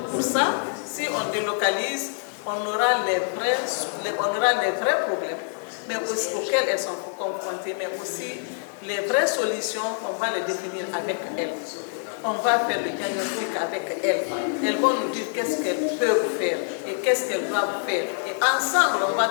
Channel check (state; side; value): silent; right; 61 dB below the other